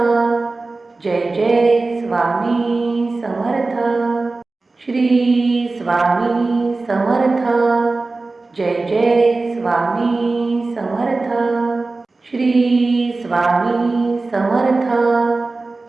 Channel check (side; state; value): left; quieter; 3.5 dB